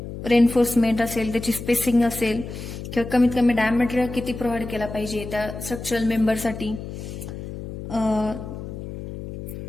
रेनफोर्समेंट असेल, त्याची स्पेसिंग असेल किंवा कमीत कमी डायमीटर किती प्रोव्हाइड केला पाहिजे त्या स्ट्रक्चरल मेंबरसाठी.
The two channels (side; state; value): left; noise; hum, 9 dB below the sound